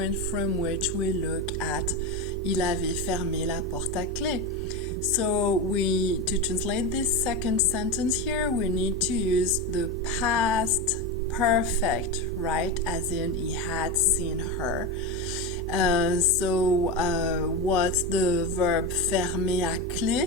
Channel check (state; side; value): normal; both; correlation 0.18